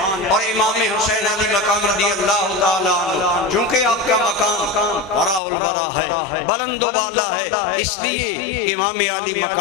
اور امام حسین علی مقام رضی اللہ تعالیٰ عنہ چونکہ آپ کا مقام برا البرا ہے، بلند و بالا ہے، اس لیے امام علی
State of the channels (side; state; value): right; drops out; at 5.4 s